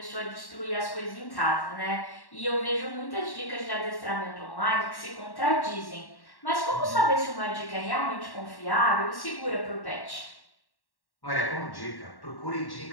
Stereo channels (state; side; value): late; right; 1.1 ms